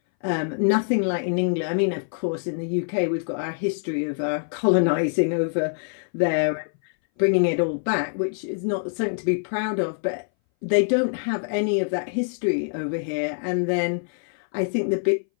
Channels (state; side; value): silent; right; 60 dB below the other